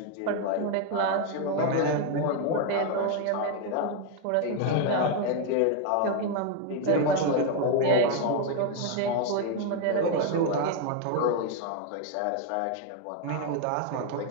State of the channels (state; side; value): different; both; correlation 0.01